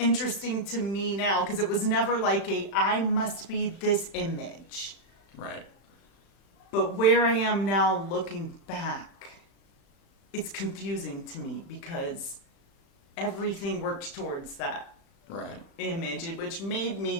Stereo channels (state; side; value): late; right; 36 ms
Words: to me now, because it was never like I must be this image. Right. But where I am now looking back, it's confusing to me because everything worked towards that image, which made me